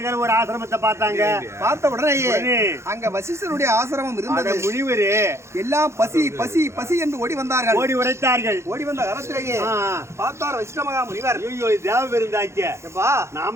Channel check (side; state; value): left; late; 0.13 ms